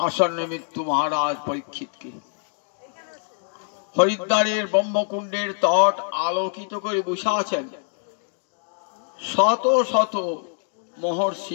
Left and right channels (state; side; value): silent; right; digital silence